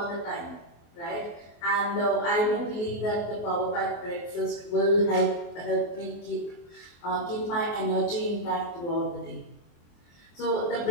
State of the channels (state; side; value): late; right; 24 ms